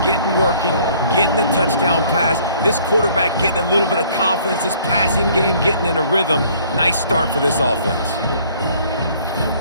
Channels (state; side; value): inverted; both; correlation -0.58